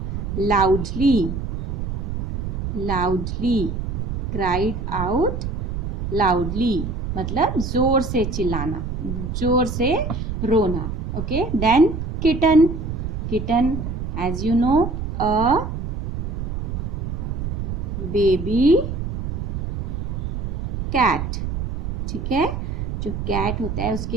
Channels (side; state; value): right; noise; rumble, 4 dB below the sound